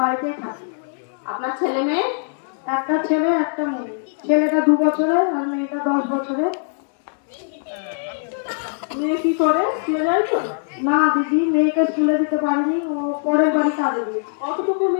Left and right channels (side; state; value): right; silent; 65 dB below the other